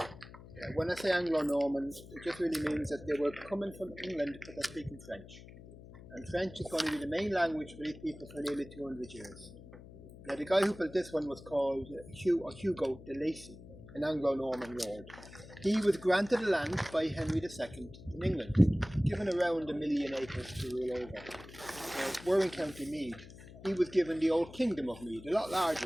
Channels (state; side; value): noise; left; hum, 17 dB below the sound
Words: When I say Anglo-Norman, it just really means that they were coming from England but they're speaking French. And French is going to be the main language for these people for nearly 200 years. Now the guy who built this one was called Hugo de Lacy, an Anglo-Norman lord. He was granted the land by Henry II in England, given around 1 million acres to rule over. We're in County Meath. He was given the old Kingdom of Meath, a lot